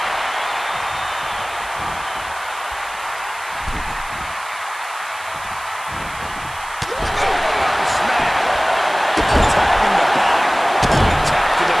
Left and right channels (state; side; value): noise; right; hiss, 17 dB below the sound